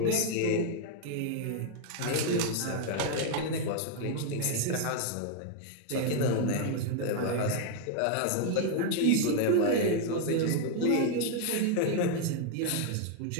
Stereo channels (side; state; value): both; different; correlation 0.00